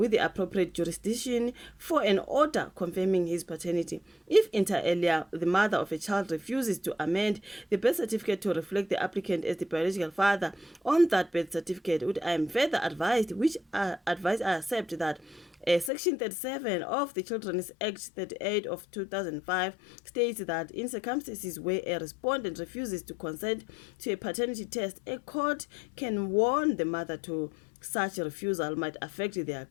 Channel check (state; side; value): drops out; right; at 15.9 s